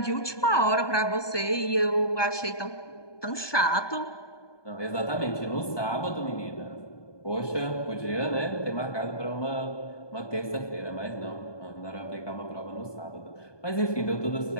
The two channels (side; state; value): right; late; 1.2 ms